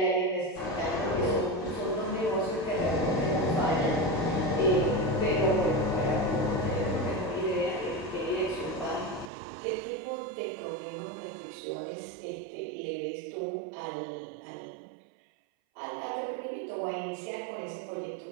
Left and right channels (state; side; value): drops out; left; at 9.3 s